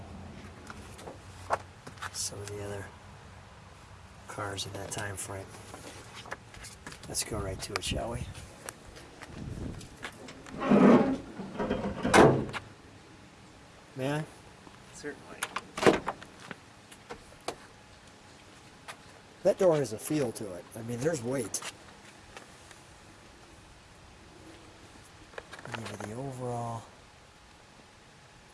Some of the other cars in that time frame. Let's go right to it, shall we? May I? Certainly. That door has a feel to it. I mean, there's weight. Give you the overall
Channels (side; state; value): both; identical; correlation 1.00